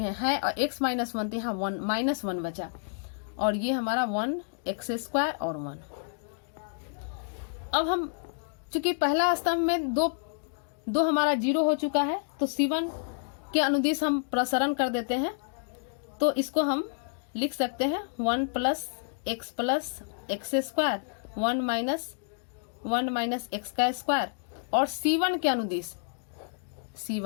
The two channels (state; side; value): silent; right; digital silence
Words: हैं और x माइनस 1 तो यहाँ 1 माइनस 1 बचा और ये हमारा 1 एक्स स्क्वायर और 1। अब हम चूंकि पहला स्तंभ में दो हमारा 0 हो चुका है तो C1 के अनुदिश हम प्रसरण कर देते हैं तो इसको हम लिख सकते हैं 1 plus x square 1 minus x का स्क्वायर और C1 के